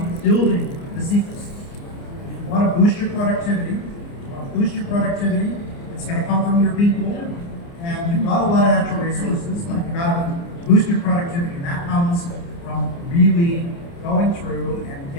building this ecosystem. If you want to boost your productivity, it's going to come from your people. And you've got a lot of natural resources, but you've got to boost your productivity. And that comes from really going through and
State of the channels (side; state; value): right; late; 29 ms